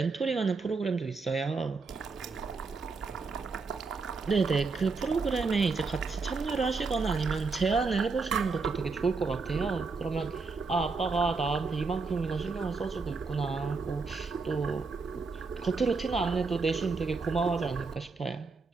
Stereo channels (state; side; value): quieter; left; 4.3 dB